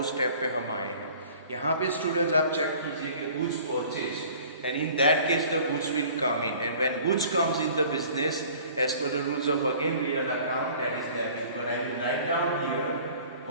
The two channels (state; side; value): inverted; both; correlation -0.49